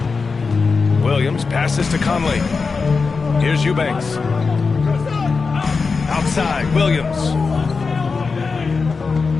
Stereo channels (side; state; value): right; quieter; 4.6 dB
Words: Williams passes to Conley. Here's Eubanks. Outside, Williams.